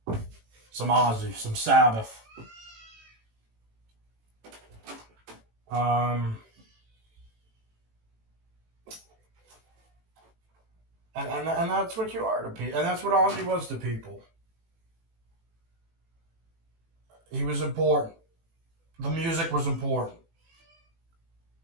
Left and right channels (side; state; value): left; late; 18 ms